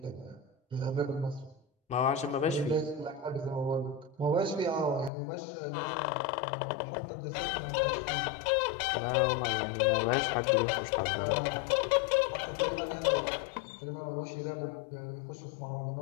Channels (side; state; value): right; drops out; at 5.1 s